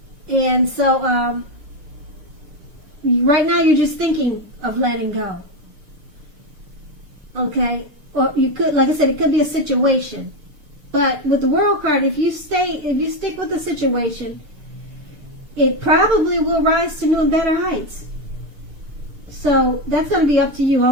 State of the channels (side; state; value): left; late; 6.6 ms